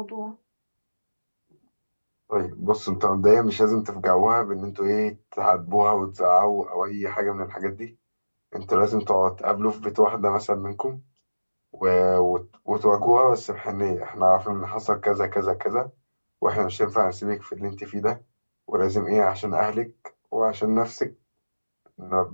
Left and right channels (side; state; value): both; inverted; correlation -1.00